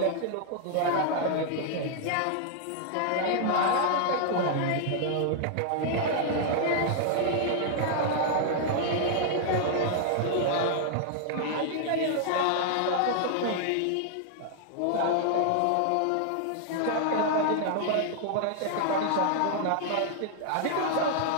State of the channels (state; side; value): different; both; correlation -0.01